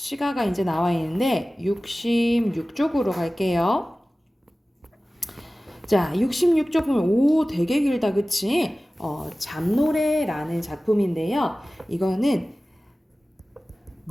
이제 나와 있는데 66쪽으로 갈게요. 자, 66쪽 보면 오 되게 길다 그치? 잠노래라는 작품인데요. 이거는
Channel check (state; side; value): normal; both; correlation 0.97